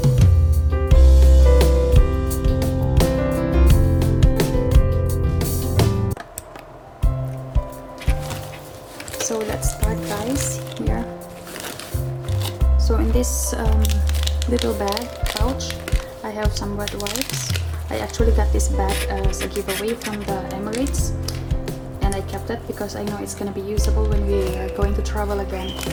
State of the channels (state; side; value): identical; both; correlation 1.00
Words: So let's start, guys. Here. So in this little bag pouch, I have some wet wipes. I actually got this bag as a giveaway from the Emirates, and I kept it because I know it's gonna be usable when we are going to travel again.